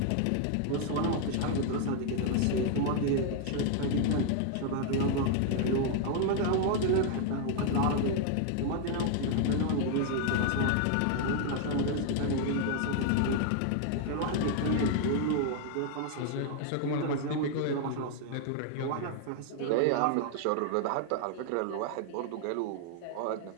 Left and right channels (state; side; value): different; both; correlation 0.00